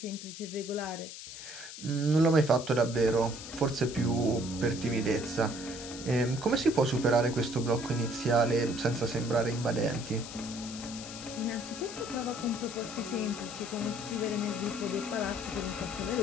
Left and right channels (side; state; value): left; noise; hiss, 11 dB below the sound